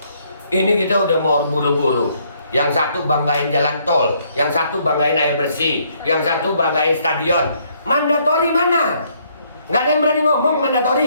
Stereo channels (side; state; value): both; inverted; correlation -0.68